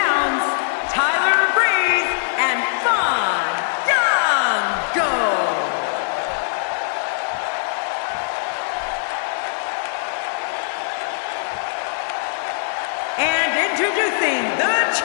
Tyler Breeze and Fandango. And introducing the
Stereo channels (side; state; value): right; silent; digital silence